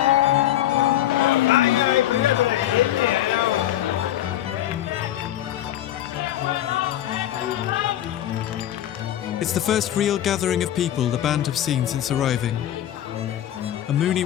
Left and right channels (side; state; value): right; quieter; 12.4 dB